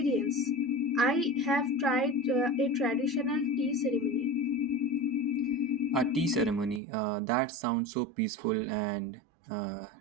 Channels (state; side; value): drops out; left; at 6.8 s